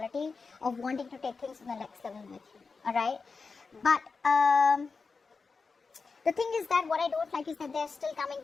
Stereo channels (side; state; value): right; quieter; 4.6 dB